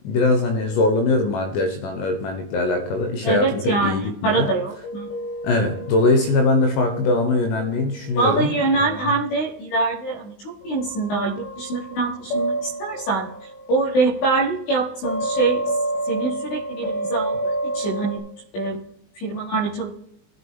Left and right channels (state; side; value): late; right; 19 ms